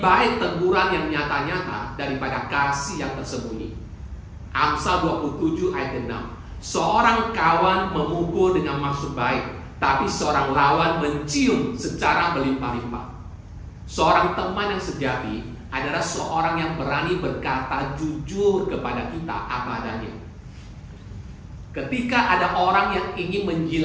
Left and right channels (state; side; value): identical; both; correlation 1.00